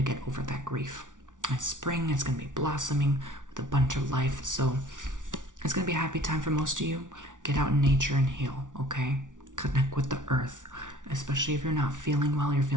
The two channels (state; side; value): late; left; 0.87 ms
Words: get over that grief. It's spring, it's going to be blossoming with a bunch of life. So it's going to be a happy time for most of you. Get out in nature and heal, okay? Connect with the earth, especially if you're not feeling well, you're